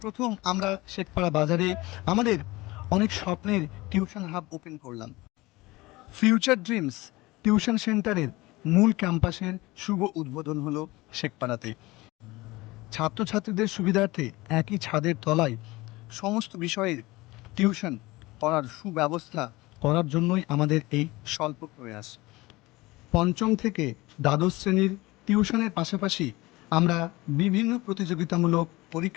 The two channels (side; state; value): right; quieter; 20.8 dB